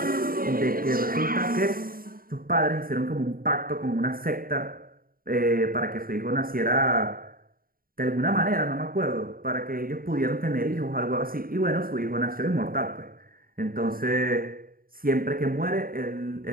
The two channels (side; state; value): left; late; 0.42 ms